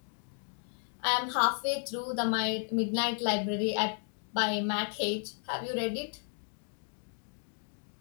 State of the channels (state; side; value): silent; right; 55 dB below the other